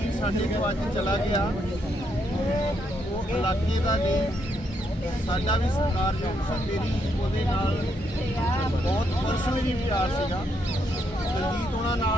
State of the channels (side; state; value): both; normal; correlation 0.76